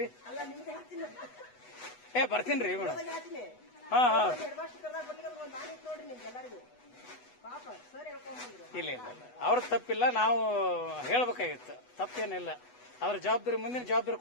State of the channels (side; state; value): right; late; 8.1 ms